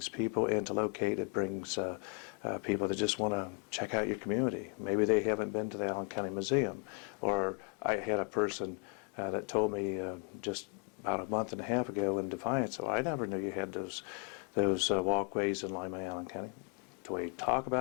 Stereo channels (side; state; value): right; quieter; 35.8 dB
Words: people in to locate, it brings people that just want to check out your community. Maybe they haven't been to the Allen County Museum. Or I had a person that told me just about a month and a half ago in Defiance, so I never knew you had those walkways in Lima, Allen County. Do we talk